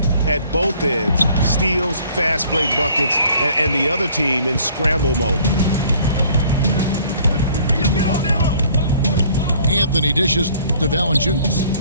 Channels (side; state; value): both; inverted; correlation -0.56